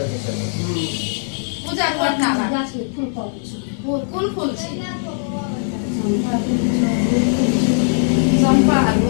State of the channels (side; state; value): right; silent; 66 dB below the other